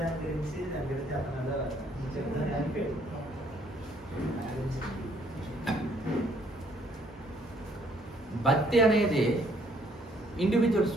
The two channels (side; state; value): both; normal; correlation 0.65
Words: భక్తి అనేది ఇండివిజువల్